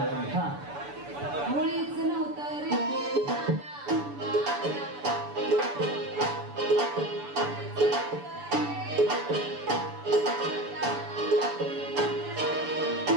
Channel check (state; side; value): late; left; 7.0 ms